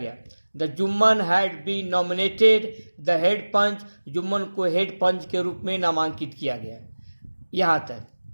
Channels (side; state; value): both; inverted; correlation -1.00